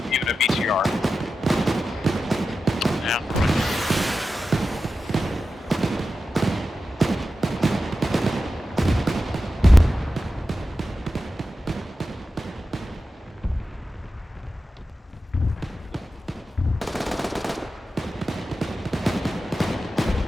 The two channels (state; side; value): normal; both; correlation 0.92